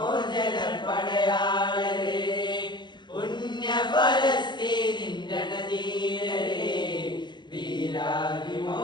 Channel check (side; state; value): right; late; 0.22 ms